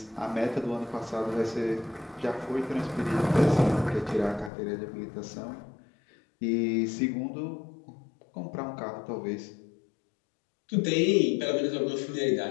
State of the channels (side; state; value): right; drops out; at 4.5 s